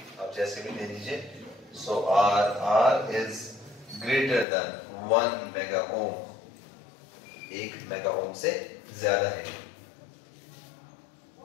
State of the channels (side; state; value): right; drops out; at 4.5 s